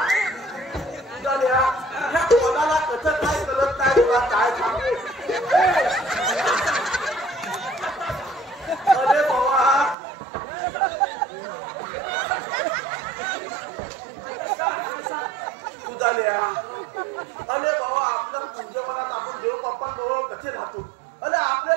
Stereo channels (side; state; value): left; drops out; at 10.0 s